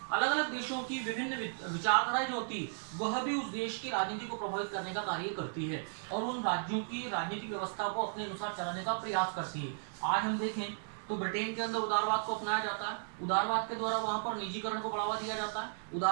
अलग अलग देशों की विभिन्न विचारधाराएं जो होती है वह भी उस देश की राजनीति को प्रभावित करने का कार्य करती है और उन राज्यों की राजनीतिक व्यवस्था को अपने अनुसार चलाने का प्रयास करती है। आज हम देखें तो ब्रिटेन के अंदर उदारवाद को अपनाया जाता है। उदारवाद के द्वारा वहां पर निजीकरण को बढ़ावा दिया जाता है।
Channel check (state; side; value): silent; left; digital silence